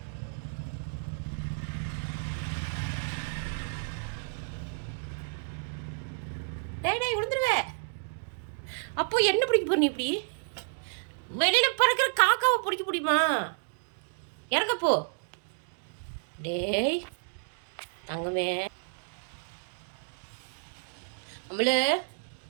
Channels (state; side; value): silent; left; digital silence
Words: டேய் விழுந்துருவே. அப்போ என்ன பிடிக்க போற நீ? இப்படி வெளியில் பறக்கிற காக்காவை பிடிக்க முடியுமா? இறங்கப்போ. டேய் தங்கமே, அம்மளு